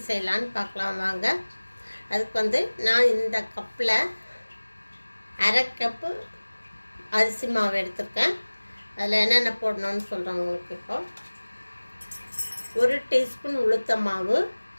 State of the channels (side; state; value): both; inverted; correlation -1.00